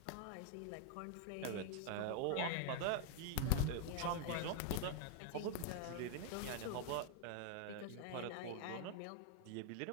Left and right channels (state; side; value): different; both; correlation 0.01